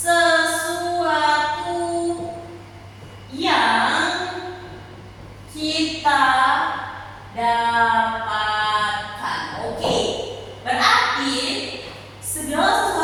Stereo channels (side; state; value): both; identical; correlation 1.00